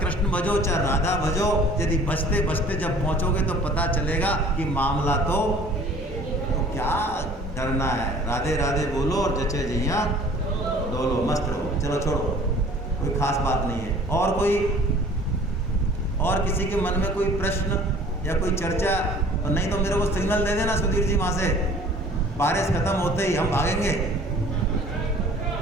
भजो चाहे राधा भजो, यदि बचते बचते जब पहुंचोगे तो पता चलेगा कि मामला तो क्या डरना है। राधे राधे बोलो और जचे जैया डोलो, मस्त रहो। चलो छोड़ो, कोई खास बात नहीं है। और किसी के मन में कोई प्रश्न या कोई चर्चा? और नहीं तो मेरे को सिग्नल दे देना सुधीर जी, वहां से बारिश खत्म होते ही हम भागेंगे।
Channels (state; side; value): normal; both; correlation 0.50